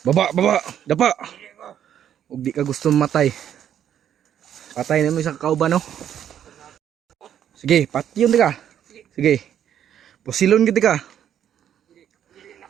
Baba, baba, dapa. Huwag di ka gusto matay. Patay na mo isang kauban no. Sige, patyon di ka. Sige. Pusilon kita ka.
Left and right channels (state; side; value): quieter; left; 9.8 dB